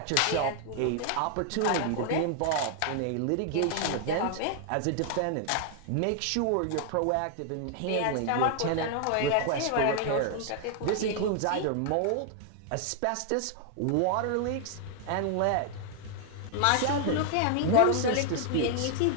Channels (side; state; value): both; different; correlation 0.00